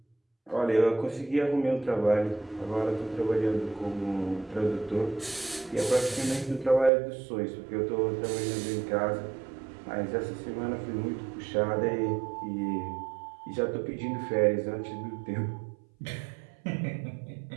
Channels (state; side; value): drops out; left; at 6.9 s